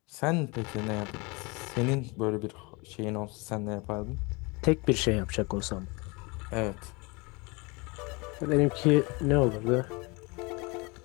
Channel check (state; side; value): quieter; right; 27.7 dB